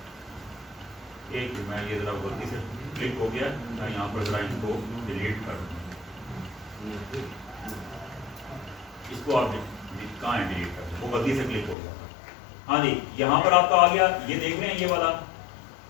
एक, मैं ये जरा गलती से क्लिक हो गया, मैं यहाँ पर जरा इसको डिलीट कर दूँ, इसको आप कहाँ है डिलीट कर, वो गलती से क्लिक हो गया। हाँ जी, यहाँ पर आपका आ गया, ये देख रहे हैं ये वाला,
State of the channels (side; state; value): right; drops out; at 11.8 s